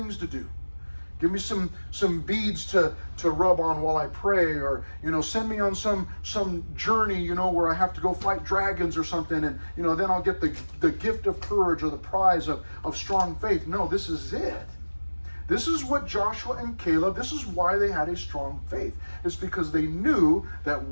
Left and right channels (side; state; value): both; inverted; correlation -1.00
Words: to do. Give me some beads to rub on while I pray, or send me on some journey, where I have to go fight dragons or something, and then I'll get the gift of courage or the prize of strong faith. No, this is it. This is what Joshua and Caleb, this is why they had a strong faith. It's because they knew that